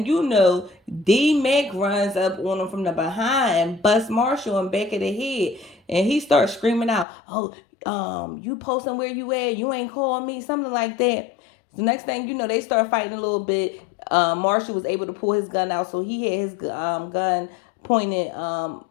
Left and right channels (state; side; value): drops out; right; at 7.1 s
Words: you know, D-Mac runs up on them from the behind and busts Marshall in back of the head. And he starts screaming out, oh, you posting where you at? You ain't calling me, something like that. The next thing you know, they start fighting a little bit. Marshall was able to pull his gun out, so he had his gun pointed